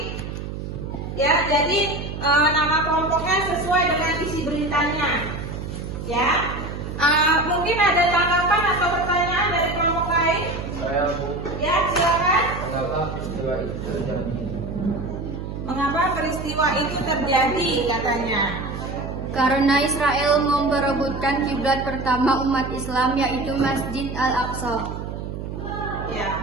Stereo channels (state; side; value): noise; right; hum, 7 dB below the sound